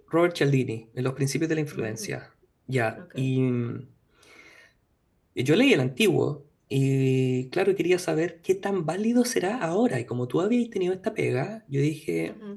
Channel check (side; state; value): both; identical; correlation 1.00